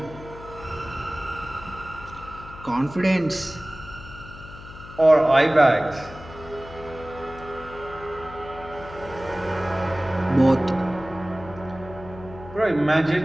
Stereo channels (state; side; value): noise; left; hum, 16 dB below the sound